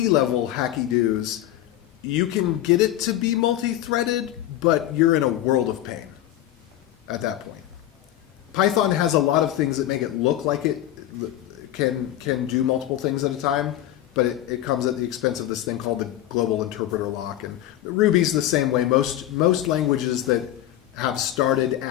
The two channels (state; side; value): quieter; right; 13.0 dB